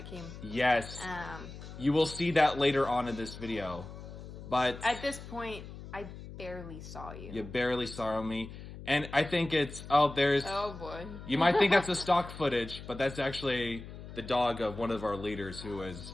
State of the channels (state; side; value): noise; left; hum, 13 dB below the sound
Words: came. Yes. You will see that later on in this video. But at this point, I barely saw you. You barely saw me. And I think it's, there's... Oh, boy. You might think that's a stock footage, but that's actually the dog of one of our leaders who is